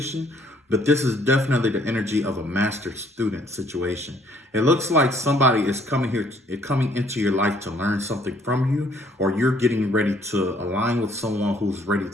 but this is definitely the energy of a master-student situation. It looks like somebody is coming into your life to learn something from you, or you're getting ready to align with someone who's ready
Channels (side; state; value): both; normal; correlation 0.63